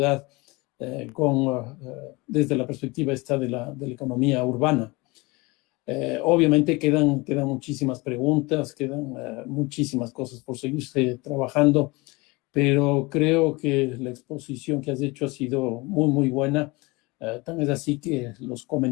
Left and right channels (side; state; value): right; quieter; 24.6 dB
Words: desde la perspectiva esta de la economía urbana. Obviamente quedan muchísimas preguntas, quedan muchísimas cosas por seguirse trabajando, pero creo que la exposición que has hecho ha sido muy, muy buena. Tan es así que los